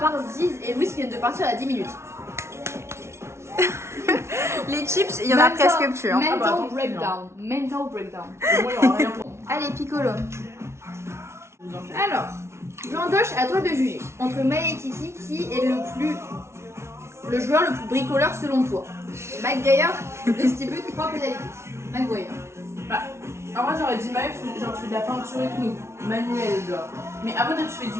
Ziz et Louis qui viennent de partir à 10 minutes. Les chips, il y en a presque plus. Hein. Mental attends, breakdown. Mental breakdown. Moi, il y aura rien pour moi. Allez, Piccolo. Alors, Jean-Doche, à toi de juger. Entre Maë et Kiki, qui est le joueur le plus bricoleur selon toi? McGuire distribue 3 pénalités. McGuire. Bah, en vrai, j'aurais dit Maël, genre tu fais de la peinture et tout, manuel, genre. Mais après, toi, tu fais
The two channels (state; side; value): late; left; 0.13 ms